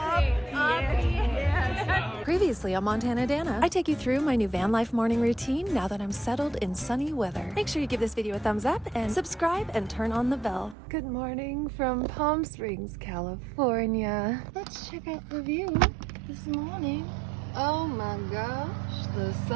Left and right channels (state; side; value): drops out; left; at 10.8 s